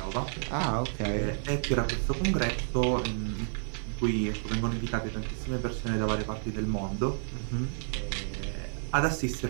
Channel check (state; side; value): silent; left; 58 dB below the other